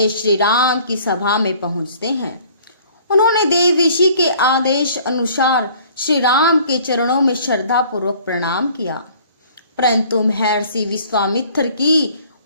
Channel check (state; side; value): inverted; both; correlation -0.53